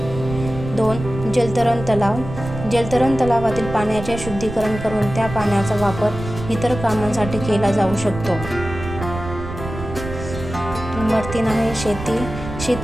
2 जलतरण तलाव. जलतरण तलावातील पाण्याचे शुद्धीकरण करून त्या पाण्याचा वापर इतर कामांसाठी केला जाऊ शकतो. नंबर 3 आहे शेती.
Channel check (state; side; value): noise; right; rumble, 9 dB below the sound